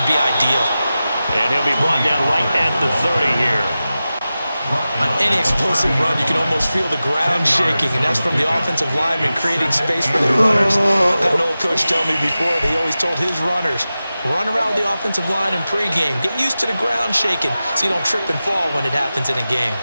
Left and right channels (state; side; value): inverted; both; correlation -0.94